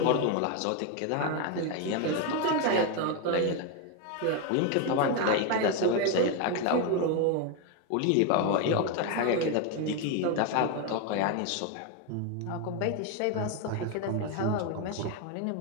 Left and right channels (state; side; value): different; both; correlation 0.02